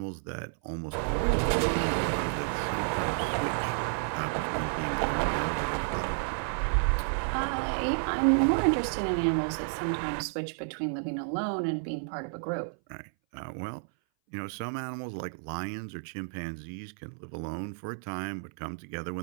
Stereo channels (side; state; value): left; silent; 57 dB below the other